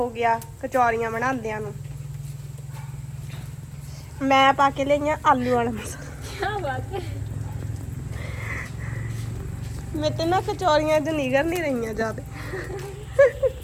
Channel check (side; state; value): both; identical; correlation 1.00